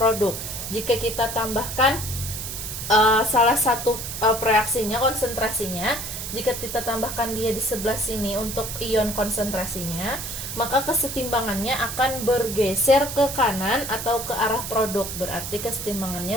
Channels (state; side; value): noise; right; hiss, 6 dB below the sound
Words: Jika kita tambahkan salah satu pereaksinya, konsentrasinya, jika kita tambahkan dia di sebelah sini untuk ion konsentrasinya, maka kesetimbangannya akan bergeser ke kanan atau ke arah produk. Berarti